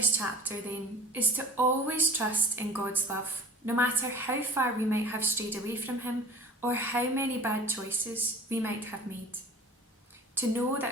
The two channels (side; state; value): both; normal; correlation 0.42